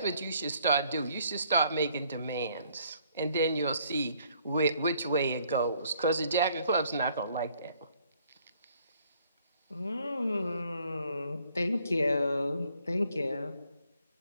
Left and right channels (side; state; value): both; inverted; correlation -0.64